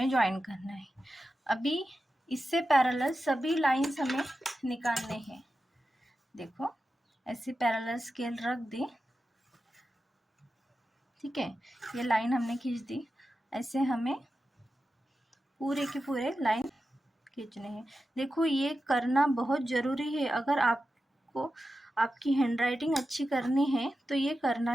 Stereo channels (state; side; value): normal; both; correlation 0.92